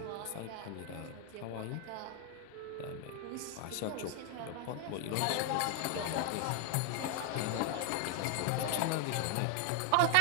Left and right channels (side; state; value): both; different; correlation 0.00